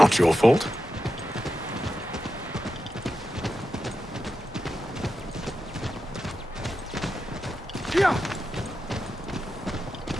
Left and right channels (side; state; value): both; normal; correlation 0.89